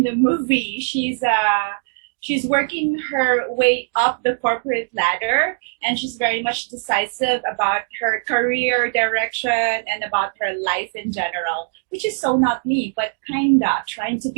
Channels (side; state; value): left; silent; digital silence